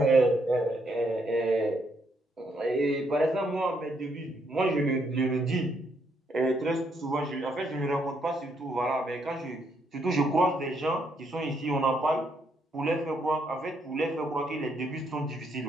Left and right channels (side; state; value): both; normal; correlation 0.74